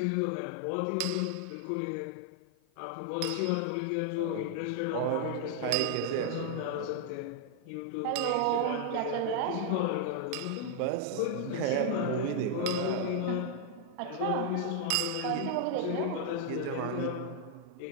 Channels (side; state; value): both; different; correlation 0.00